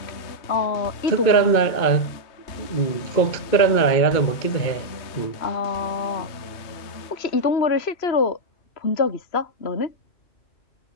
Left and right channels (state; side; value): late; right; 3.1 ms